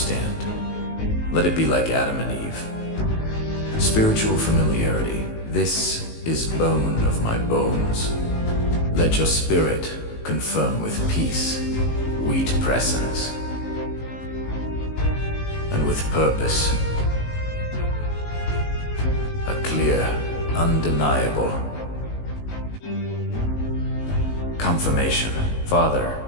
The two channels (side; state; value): right; late; 19 ms